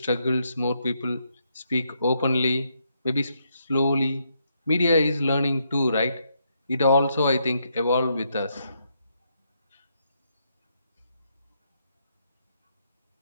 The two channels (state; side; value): inverted; both; correlation -0.77